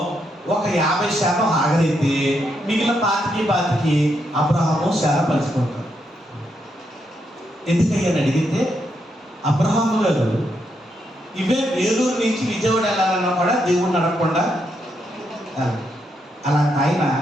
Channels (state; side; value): normal; both; correlation 0.79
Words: ఒక 50% హాగరైతే మిగిలిన 25 అబ్రహాము శారా పంచుకుంటారు. ఎందుకయ్యని అడిగితే, అబ్రహాము గారు ఇవే వేలూరు నుంచి విజయవాడ వెళ్ళాలన్నా కూడా దేవుడిని అడగకుండా అలాంటి